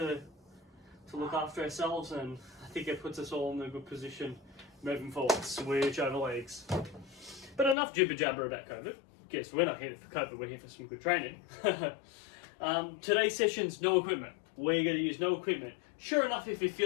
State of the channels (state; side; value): drops out; right; at 7.8 s